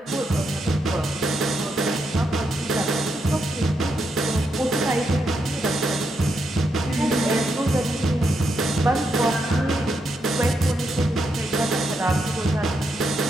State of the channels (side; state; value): both; normal; correlation 0.81